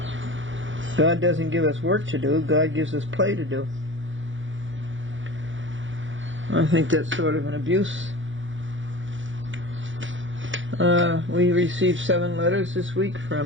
God doesn't give us work to do, God gives us play to do. I think that's sort of an abuse. We received 7 letters this week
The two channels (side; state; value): left; late; 0.56 ms